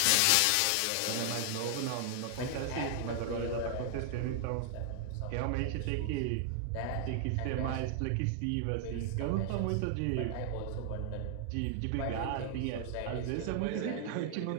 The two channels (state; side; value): different; both; correlation 0.00